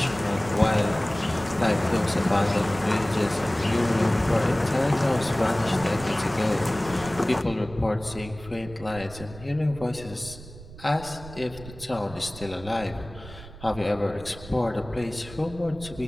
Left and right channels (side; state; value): right; noise; rumble, 16 dB below the sound